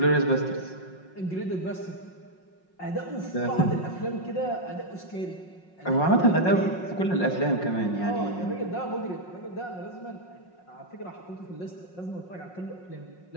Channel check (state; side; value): late; right; 5.5 ms